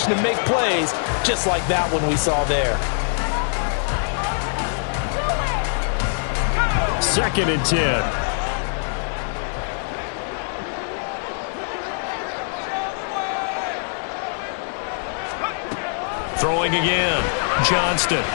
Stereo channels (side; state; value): right; silent; digital silence